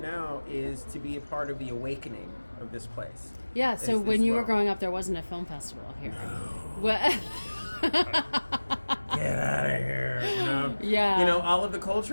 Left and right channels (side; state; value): both; inverted; correlation -1.00